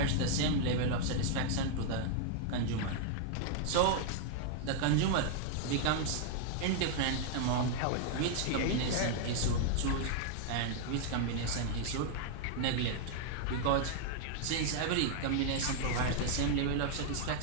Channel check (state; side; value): different; both; correlation -0.01